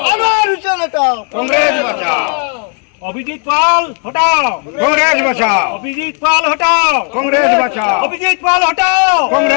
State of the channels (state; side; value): quieter; right; 38.9 dB